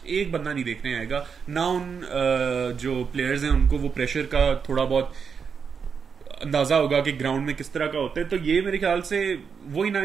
एक बंदा नहीं देखने आएगा ना. उन जो प्लेयर्स हैं उनको वो प्रेशर का थोड़ा बहुत अंदाजा होगा कि ग्राउंड में किस तरह का होता है. तो ये मेरे ख्याल से वही ना,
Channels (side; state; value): left; quieter; 6.2 dB